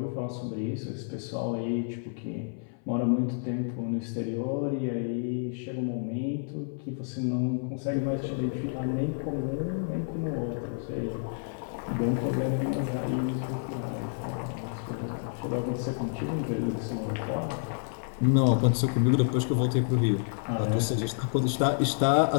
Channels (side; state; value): right; silent; 56 dB below the other